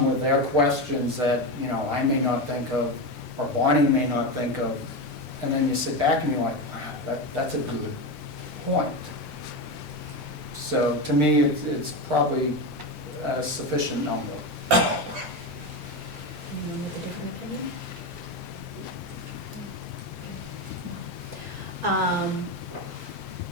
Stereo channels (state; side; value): late; right; 1.4 ms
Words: with their questions that, you know, I may not think of, or Bonnie may not think of, and then you sit back and you're like, wow, that's a good point. So to me, it's probably a sufficient number. Anyone with a different opinion?